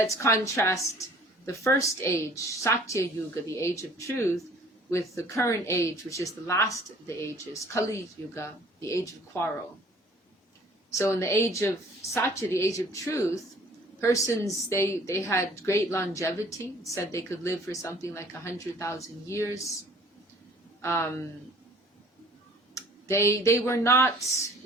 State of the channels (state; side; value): normal; both; correlation 0.53